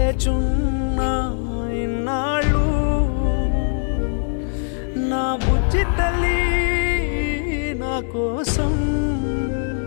ఇన్నాళ్ళు నా బుజ్జి తల్లి నా కోసం.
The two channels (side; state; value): right; silent; digital silence